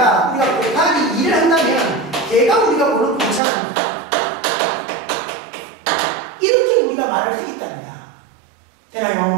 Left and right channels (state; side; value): drops out; left; at 3.4 s